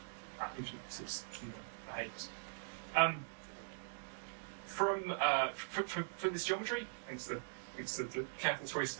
influences behaves. For this geometry, thanks to the careful choice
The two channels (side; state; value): left; silent; digital silence